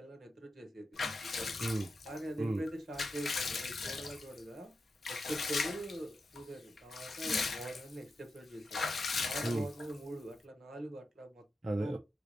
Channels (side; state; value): both; normal; correlation 0.88